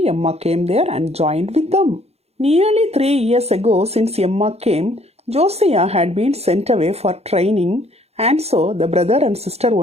Emma came there and joined with them. Nearly 3 years ago, since Emma came, Josiah had been sent away for training, and so the brother and sister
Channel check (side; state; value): left; late; 0.30 ms